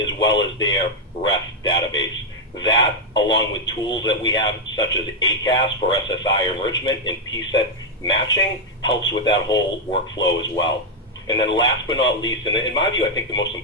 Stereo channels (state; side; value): normal; both; correlation 0.01